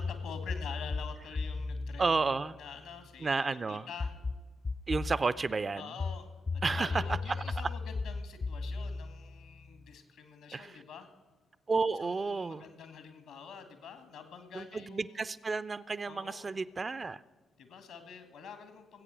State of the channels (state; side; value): normal; both; correlation 0.90